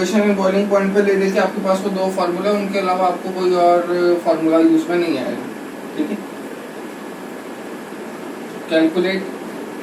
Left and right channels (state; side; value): identical; both; correlation 1.00